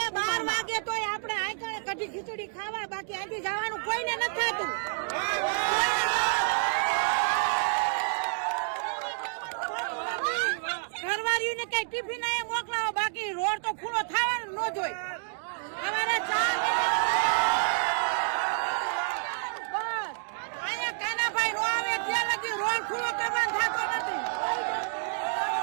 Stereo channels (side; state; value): left; silent; digital silence